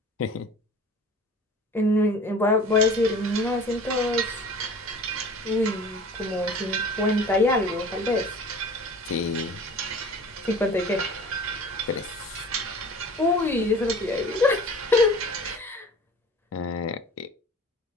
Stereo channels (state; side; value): normal; both; correlation 0.43